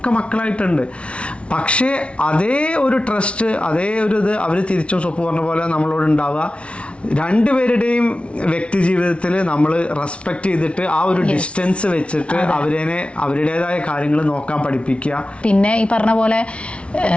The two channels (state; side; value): late; right; 0.060 ms